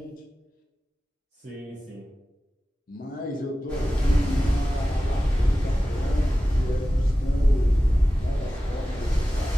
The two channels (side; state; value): both; normal; correlation 0.96